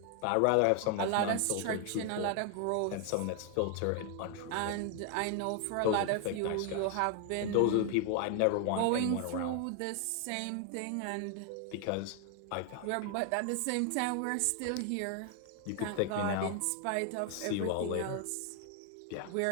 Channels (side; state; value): both; different; correlation 0.00